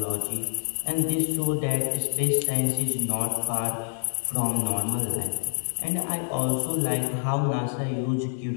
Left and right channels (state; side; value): silent; right; digital silence